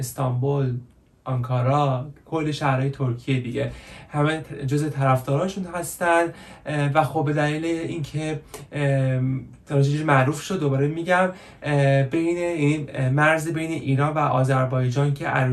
آنکارا، کل شهرهای ترکیه دیگه همه جز طرفداراشون هستن و خب به دلیل اینکه تراژدی معروف شد دوباره میگم بین این مرز بین ایران و آذربایجان که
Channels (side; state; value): both; identical; correlation 1.00